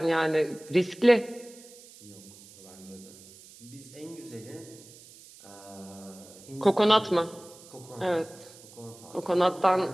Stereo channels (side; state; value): right; noise; hiss, 21 dB below the sound